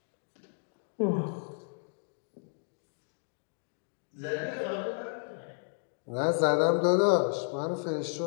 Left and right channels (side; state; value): right; silent; 56 dB below the other